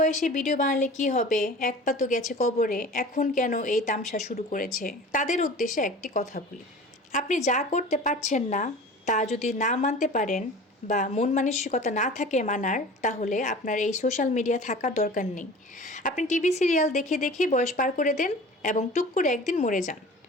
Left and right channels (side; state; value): both; normal; correlation 0.40